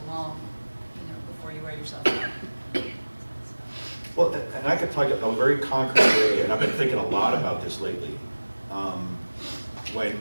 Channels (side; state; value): both; inverted; correlation -1.00